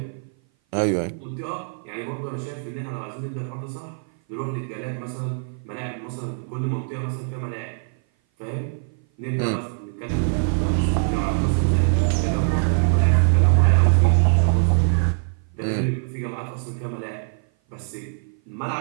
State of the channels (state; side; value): silent; left; 57 dB below the other